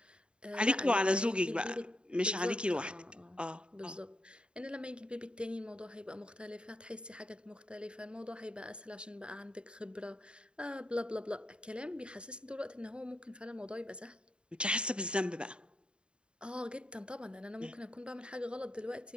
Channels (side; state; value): left; late; 0.053 ms